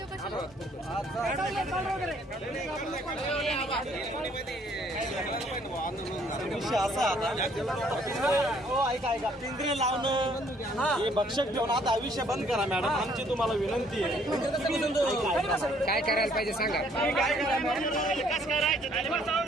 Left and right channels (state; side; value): normal; both; correlation 0.63